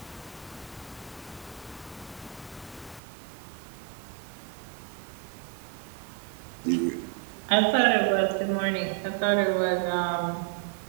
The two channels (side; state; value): left; drops out; at 3.0 s